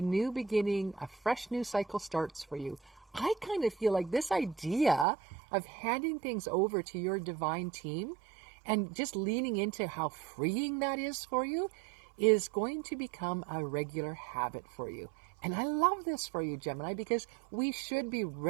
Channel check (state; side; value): drops out; left; at 5.1 s